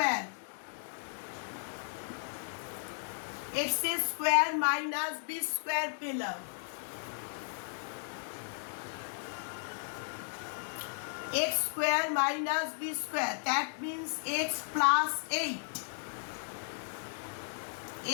x square minus b square পেলাম। x square minus b square, that means x plus 8,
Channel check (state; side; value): silent; right; digital silence